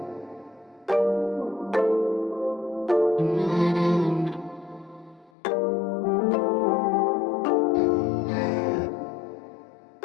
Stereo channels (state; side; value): drops out; right; at 5.3 s